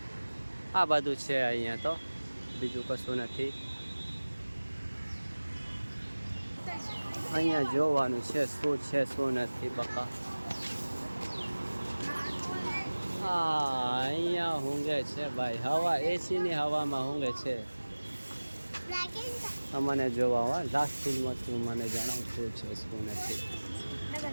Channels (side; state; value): both; inverted; correlation -1.00